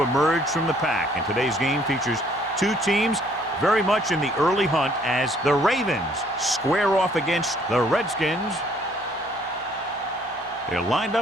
emerge from the pack. And today's game features two teams very much in the early hunt as the Ravens square off against the Redskins. They're lined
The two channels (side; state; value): both; normal; correlation 0.62